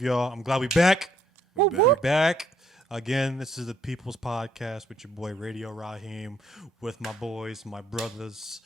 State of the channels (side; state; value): both; normal; correlation 0.68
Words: y'all. I'm glad we back. We're back. Again, this is the People's Podcast with your boy Radio Raheem, with my boys, my brothers,